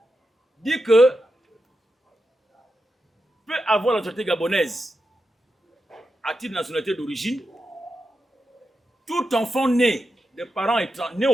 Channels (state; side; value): normal; both; correlation 0.88